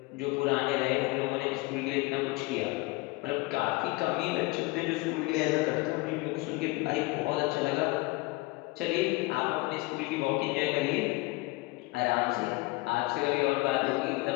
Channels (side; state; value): right; quieter; 22.9 dB